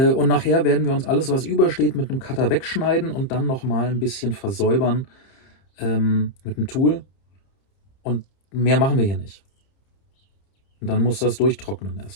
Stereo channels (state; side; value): late; right; 30 ms